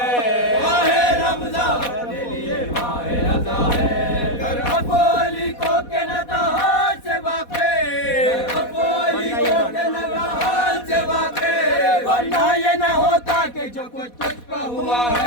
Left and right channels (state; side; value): late; right; 4.1 ms